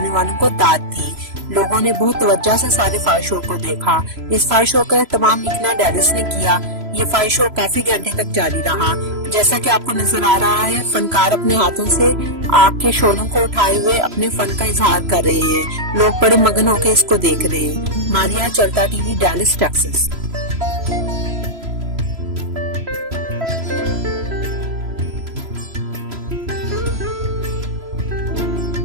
والوں کو داد دی۔ لوگوں نے بہت توجہ سے سارے فائر شو کو دیکھا۔ اس فائر شو کا اہتمام مکنا ڈیلس نے کیا۔ یہ فائر شو کافی گھنٹے تک جاری رہا۔ جیسا کہ آپ کو نظر آ رہا ہے، فنکار اپنے ہاتھوں سے آگ کے شعلوں کو اٹھائے ہوئے اپنے فن کا اظہار کر رہے ہیں۔ لوگ بڑے مگن ہو کے اس کو دیکھ رہے ہیں۔ ماریا، چلتا ٹی وی، ڈیلاس، ٹیکساس۔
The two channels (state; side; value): late; left; 3.0 ms